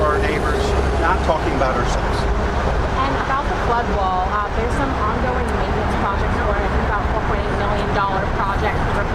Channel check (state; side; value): identical; both; correlation 1.00